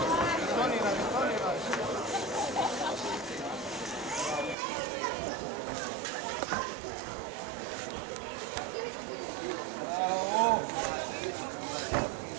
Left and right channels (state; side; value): drops out; left; at 4.5 s